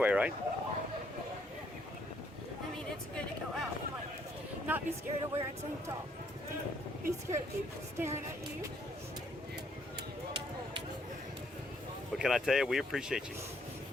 right? I mean, it's good to go out and like not be scared of wearing tank top. Be scared of people staring at you. But can I tell you, we appreciate you.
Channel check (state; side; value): normal; both; correlation 0.69